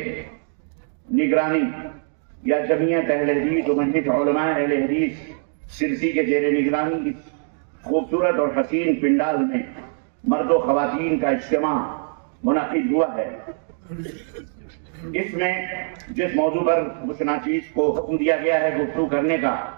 نگرانی یا جمعیت اہل حدیث و مجلس علماء اہل حدیث سرسی کے زیر نگرانی اس خوبصورت اور حسین پنڈال میں مرد و خواتین کا اجتماع منعقد ہوا ہے، اس میں جس موضوع پر مشناچیز کو حکم دیا گیا ہے گفتگو کرنے کا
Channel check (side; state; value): left; silent; 62 dB below the other